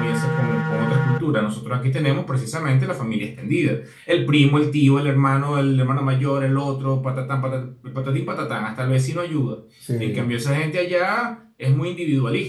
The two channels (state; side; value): identical; both; correlation 1.00